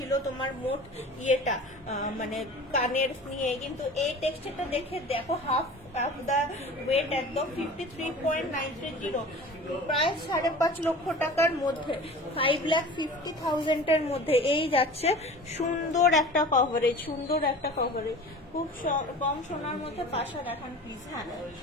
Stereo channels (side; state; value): both; normal; correlation 0.39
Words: তোমার মোট ইয়েটা, মানে কানের নিয়ে। কিন্তু এই টেক্সচারটা দেখে দেখো, হাফ দা ওয়েট একদম 53.930, প্রায় 5.5 লক্ষ টাকার মধ্যে, 5,50,000 এর মধ্যে এই যাচ্ছে। সুন্দর একটা কভারেজ, সুন্দর একটা কভারেজ, খুব কম সোনার মধ্যে পাশা দেখান প্লিজ। হ্যাঁ